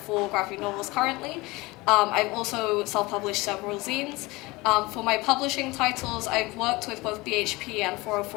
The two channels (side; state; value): right; quieter; 22.5 dB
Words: graphic novels currently. I've also self-published several zines. For my publishing titles, I've worked with both BHP and